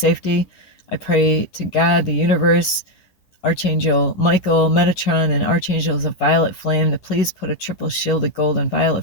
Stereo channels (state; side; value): late; right; 10 ms